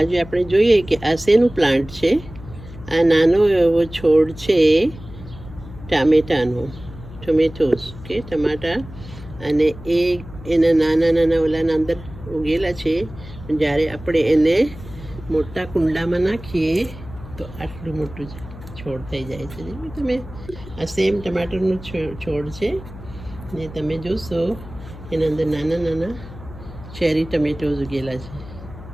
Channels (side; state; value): left; noise; hum, 15 dB below the sound